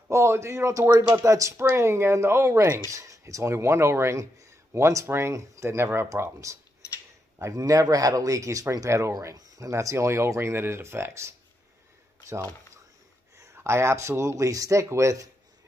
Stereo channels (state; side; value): normal; both; correlation 0.83